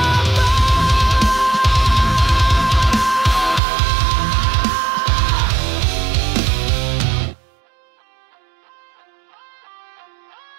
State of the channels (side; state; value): left; drops out; at 3.6 s